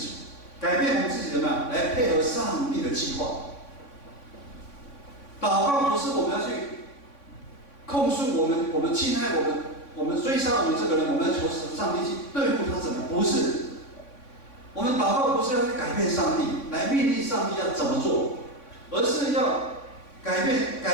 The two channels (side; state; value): right; late; 3.5 ms